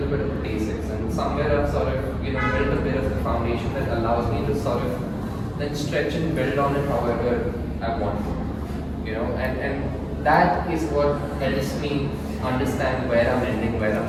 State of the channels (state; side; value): identical; both; correlation 1.00